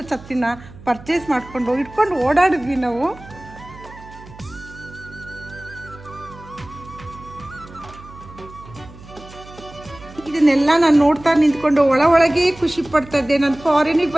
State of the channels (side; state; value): right; noise; hum, 19 dB below the sound